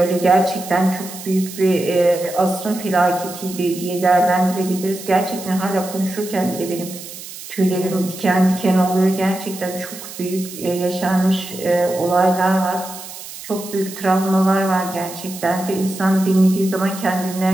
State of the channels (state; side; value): noise; right; hiss, 13 dB below the sound